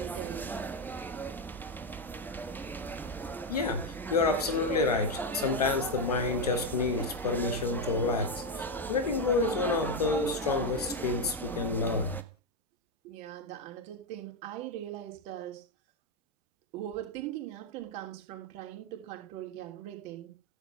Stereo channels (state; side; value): normal; both; correlation 0.07